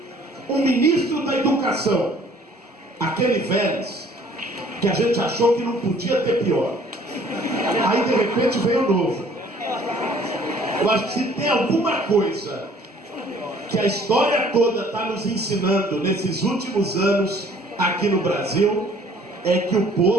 um ministro da educação, aquele Vélez, que a gente achou que não podia ter pior, aí de repente veio o novo. Eu acho que se tem alguma coisa que a história toda está nos ensinando nesses últimos anos aqui no Brasil, é que o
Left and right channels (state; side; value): normal; both; correlation 0.56